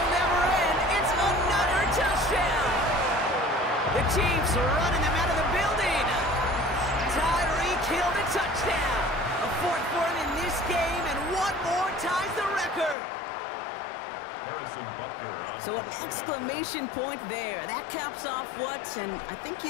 never end. It's another touchdown. The Chiefs are running them out of the building. Tyreek Hill the touchdown. A fourth for him in this game, and one more ties the record. So an exclamation point there. That caps off what, and I think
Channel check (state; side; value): drops out; right; at 13.0 s